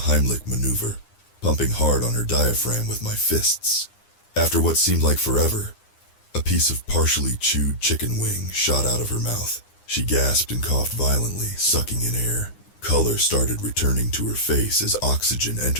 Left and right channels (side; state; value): right; late; 9.8 ms